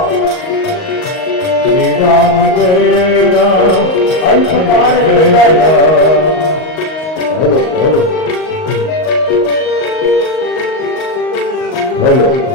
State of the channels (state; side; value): late; right; 38 ms